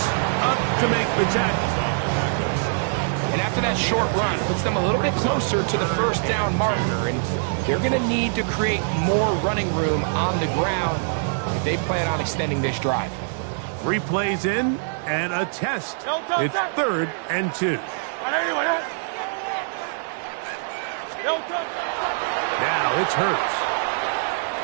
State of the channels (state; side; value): silent; left; digital silence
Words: up to make the tackle. And after that short run, puts them a little bit closer to the first down marker. And they're going to need to create more running room on the ground if they plan on extending this drive. 3 plays in. And a test. It's 3rd and 2. Now it's Hurts.